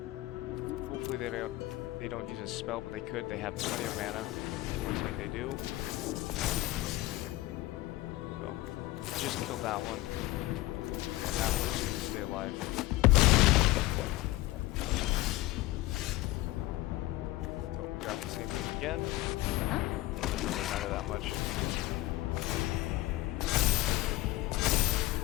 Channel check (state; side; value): quieter; right; 18.2 dB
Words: Hopefully they don't use a spell, but they could. They have plenty of mana. Looks like they do. So, just killed that one. And that one's going to stay alive. So, we got the same thing again. Doesn't matter that much.